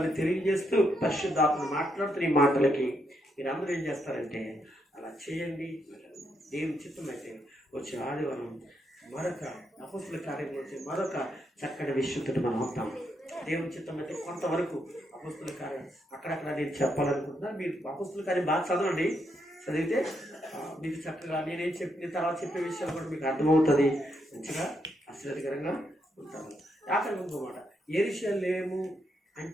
తెలియజేస్తూ పరిశుద్ధాత్మను మాట్లాడుతున్న ఈ మాటలకి మీరందరూ ఏం చేస్తారంటే అలా చేయండి. దేవుని చిత్తం అయితే వచ్చే ఆదివారం మరొక అపొస్తలుల కార్యంలో వచ్చే మరొక చక్కటి విషయంతో మనం అవుతాం. దేవుని చిత్తం అయితే కొంతవరకు అపొస్తలుల కార్యం అక్కడక్కడ నేను చెప్పాలనుకుంటున్నాను. మీరు అపొస్తలుల కార్యం బాగా చదవండి. చదివితే మీకు చక్కగా నేనేం చెప్పిన తర్వాత చెప్పే విషయాలు కూడా మీకు అర్థమవుతుంది. మంచిగా ఆశ్చర్యకరంగా ఉంటాము. ఆఖరి ఇంకోమాట, యెరూషలేము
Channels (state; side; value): normal; both; correlation 0.79